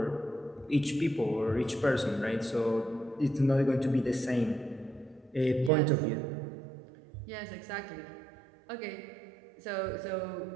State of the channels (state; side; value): drops out; left; at 5.7 s